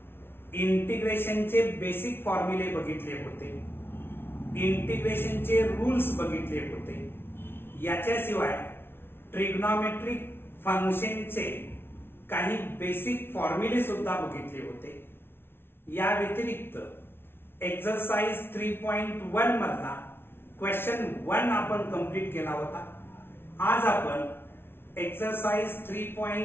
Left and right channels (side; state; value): right; late; 0.11 ms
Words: इंटिग्रेशनचे बेसिक फॉर्म्युले बघितले होते, इंटिग्रेशनचे रूल्स बघितले होते। याच्याशिवाय ट्रिग्नोमेट्रिक फंक्शनचे काही बेसिक फॉर्म्युले सुद्धा बघितले होते। या व्यतिरिक्त एक्सरसाइज 3.1 मधला क्वेश्चन 1 आपण कंप्लीट केला होता। आज आपण एक्सरसाइज